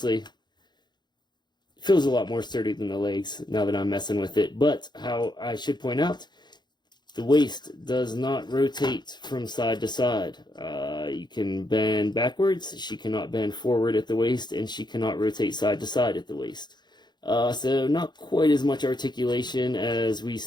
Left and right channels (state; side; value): late; right; 0.21 ms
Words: it feels a lot more sturdy than the legs now that I'm messing with it. But how I should point out, the waist does not rotate from side to side. You can bend backwards. She cannot bend forward at the waist, and she cannot rotate side to side at the waist. So not quite as much articulation as we